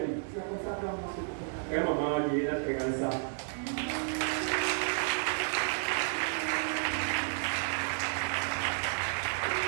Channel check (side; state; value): left; silent; 56 dB below the other